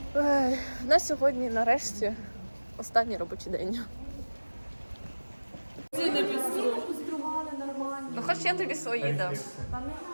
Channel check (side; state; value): both; inverted; correlation -1.00